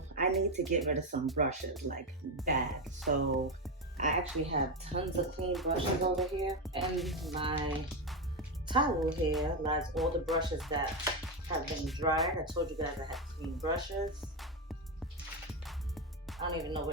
I need to get rid of some brushes, like bad. So I actually have tons of clean brushes over here, and my towel here lies all the brushes that have been dried. I told you guys I had clean brushes. I don't even know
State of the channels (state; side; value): normal; both; correlation 0.10